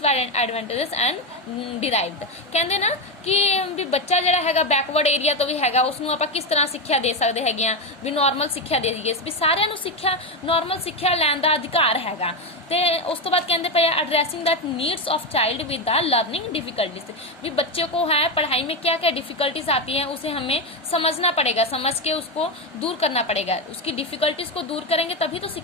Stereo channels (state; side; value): normal; both; correlation 0.11